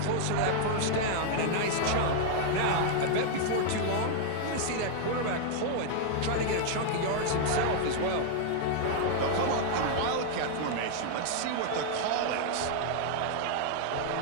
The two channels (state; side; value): different; both; correlation 0.00